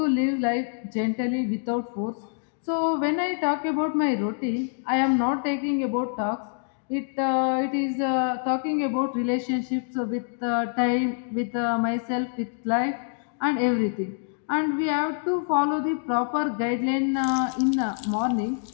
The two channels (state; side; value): silent; right; 61 dB below the other